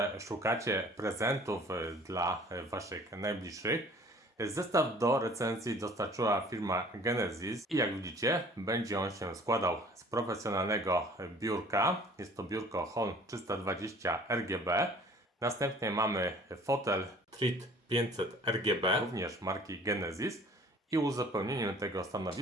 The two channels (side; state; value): both; normal; correlation 0.51